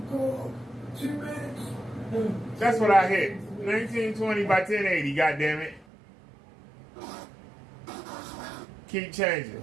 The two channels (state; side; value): drops out; left; at 5.9 s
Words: minutes. That's what I hit. 1920 by 1080, goddammit. Keep